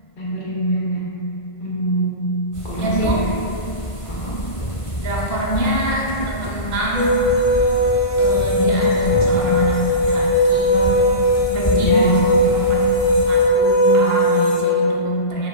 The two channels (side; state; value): right; late; 1.5 ms